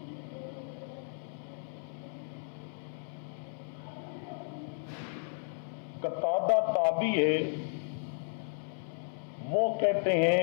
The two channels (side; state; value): right; silent; 55 dB below the other